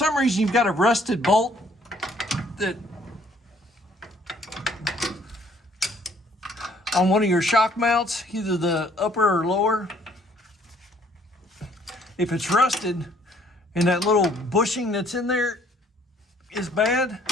reason you've got a rusted bolt that on one of your shock mounts, either the upper or lower, if it's rusted and that little bushing that's in there is bad,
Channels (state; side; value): normal; both; correlation 0.62